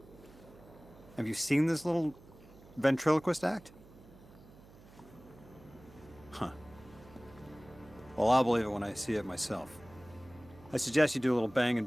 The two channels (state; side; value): noise; right; hum, 22 dB below the sound